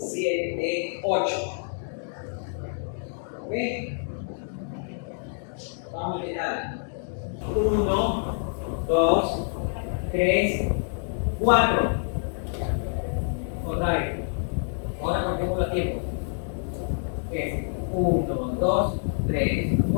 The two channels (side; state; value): right; silent; digital silence